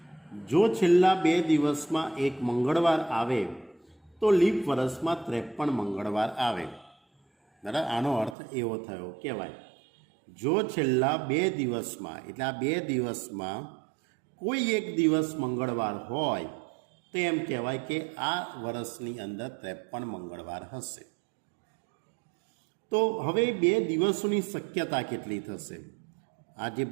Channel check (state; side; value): drops out; left; at 8.3 s